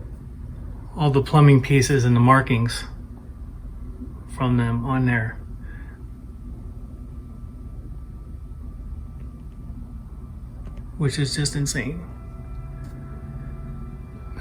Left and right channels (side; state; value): both; identical; correlation 1.00